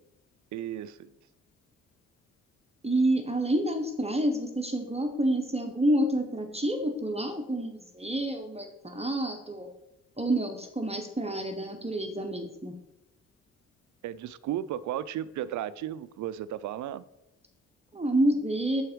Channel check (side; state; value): both; normal; correlation 0.67